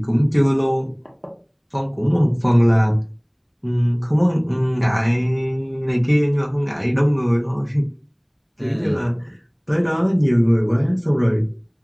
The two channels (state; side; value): identical; both; correlation 1.00